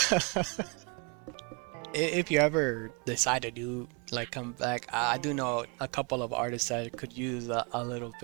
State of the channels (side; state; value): left; quieter; 32.6 dB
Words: If you ever decide to do like come back, I do know a couple of artists that could use a little